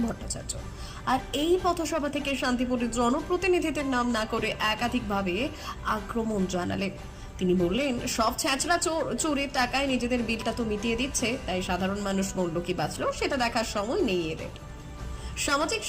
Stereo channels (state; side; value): identical; both; correlation 1.00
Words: ভট্টাচার্য। আর এই পথসভা থেকে শান্তিপুরের জনপ্রতিনিধিদের নাম না করে একাধিকভাবে আক্রমণ জানালেন। তিনি বললেন, সব ছ্যাঁচড়া চোরের টাকায় নিজেদের বিলটা তো মিটিয়ে দিচ্ছে, তাই সাধারণ মানুষ মরল কি বাঁচলো সেটা দেখার সময় নেই এদের। সামাজিক